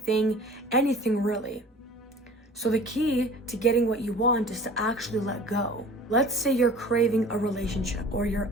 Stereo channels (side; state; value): both; normal; correlation 0.44